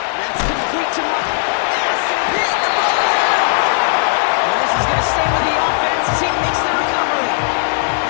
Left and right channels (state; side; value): silent; right; digital silence